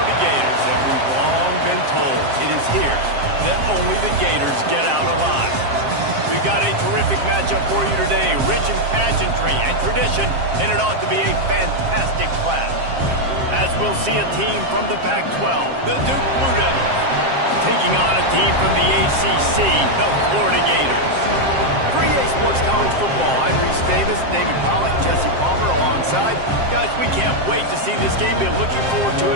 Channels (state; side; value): late; left; 7.5 ms